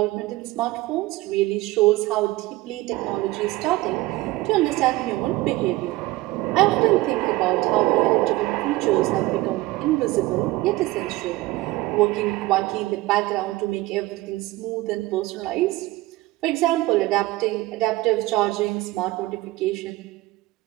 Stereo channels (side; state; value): left; quieter; 19.1 dB